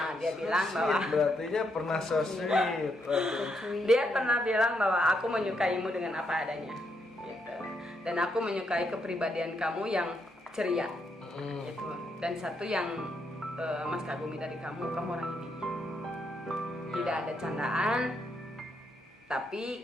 Dia bilang bahwa berartinya pernah so sweet. Dia pernah bilang bahwa aku menyukaimu dengan apa adanya gitu. Dan aku menyukai kepribadian kamu yang ceria gitu. Dan satu yang mas kagumi dari kamu orang ini tidak ada candaan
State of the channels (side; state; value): both; normal; correlation 0.78